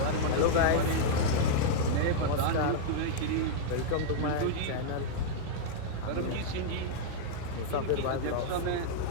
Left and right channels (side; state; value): both; different; correlation -0.02